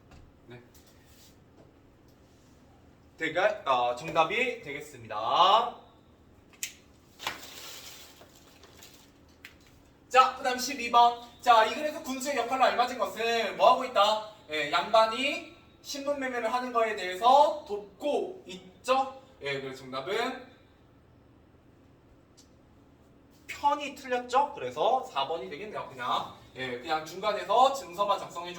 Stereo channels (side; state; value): both; identical; correlation 1.00